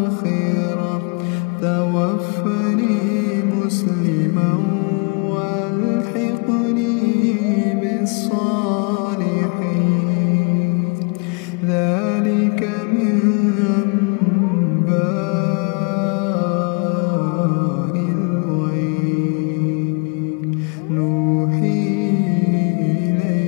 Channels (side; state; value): right; quieter; 35.0 dB